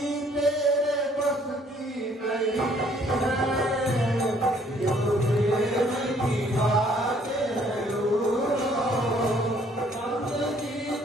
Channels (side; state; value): both; normal; correlation 0.62